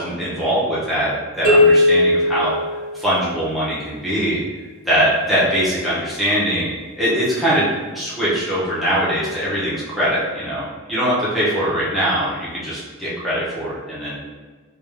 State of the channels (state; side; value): normal; both; correlation -0.03